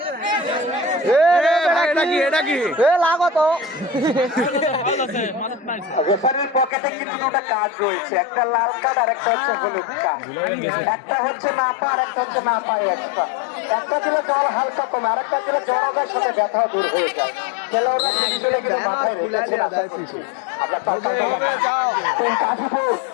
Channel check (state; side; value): drops out; right; at 6.8 s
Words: রেফারির পকেটে কিন্তু একটা কাজ রয়েছে, একটা লাল কার্ড আর একটা হচ্ছে হলুদ কার্ড। একটা হচ্ছে মাপা আর একটা হচ্ছে না পায় এক্সট্রা। একটা দিলে জ্বর হালকা কমে, আর একটা দিলে জ্বরের সাথে ব্যথা দূর হয়ে যায়।